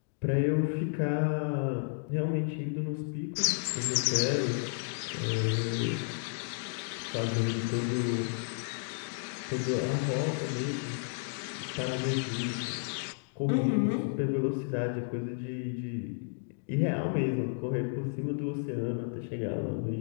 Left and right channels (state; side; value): silent; right; digital silence